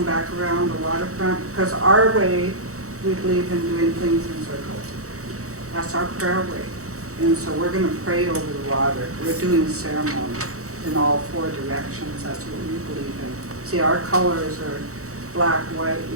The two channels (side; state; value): left; late; 0.65 ms